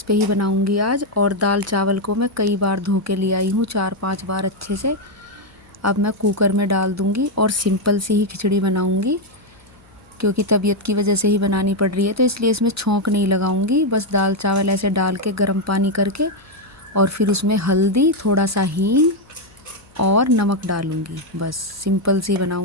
पे ही बनाऊंगी आज। और दाल चावल को मैं कई बार धो के ले आई हूँ, 4-5 बार अच्छे से। अब मैं कुकर में डाल दूँगी और सिंपल सी ही खिचड़ी बनाऊँगी, क्योंकि तबीयत की वजह से ही बनानी पड़ रही है, तो इसलिए इसमें छौंक नहीं लगाऊंगी। बस दाल चावल ऐसे डाल के गर्म पानी करके और फिर उसमें हल्दी, थोड़ा सा हींग और नमक डालूंगी। बस सिंपल सी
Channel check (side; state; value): left; noise; hum, 30 dB below the sound